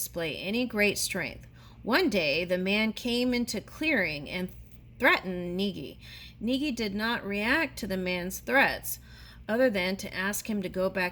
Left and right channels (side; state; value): both; identical; correlation 1.00